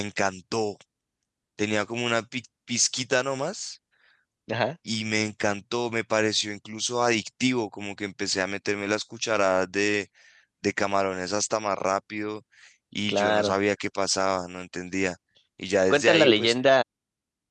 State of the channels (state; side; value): identical; both; correlation 1.00